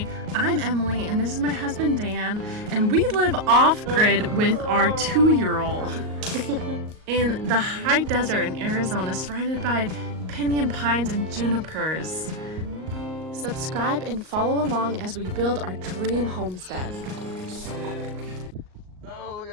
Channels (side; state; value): left; late; 38 ms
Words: Emily and this is my husband Dan, and we live off-grid with our 2-year-old in the high desert in Arizona, surrounded by pinyon pines and junipers. Subscribe and follow along as we build our dream homestead. Sick. Oh, look at